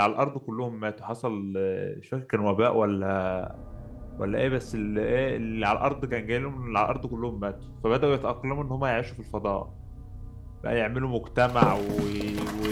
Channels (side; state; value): both; identical; correlation 1.00